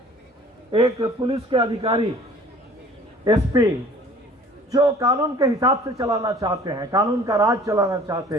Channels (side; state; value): both; normal; correlation 0.50